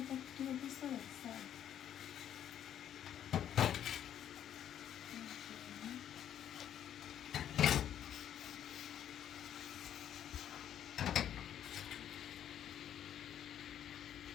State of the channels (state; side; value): quieter; right; 10.1 dB